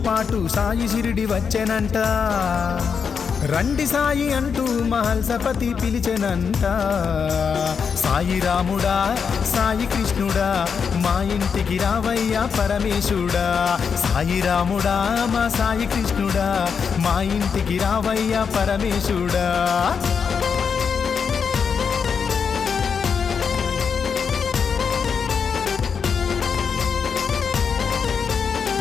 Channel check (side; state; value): right; quieter; 6.3 dB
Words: పాటు సాయి షిరిడి వచ్చెనంట రండి సాయి అంటూ మహల్సపతి పిలిచెనంట సాయి రాముడా సాయి కృష్ణుడా మా ఇంటికి రావయ్యా పరమేశుడా సాయి రాముడా మా సాయి కృష్ణుడా మా ఇంటికి రావయ్యా పరమేశుడా